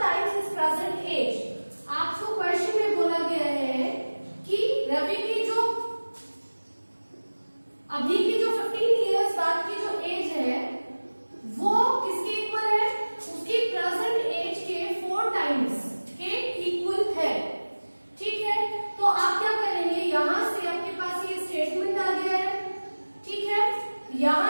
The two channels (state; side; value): inverted; both; correlation -1.00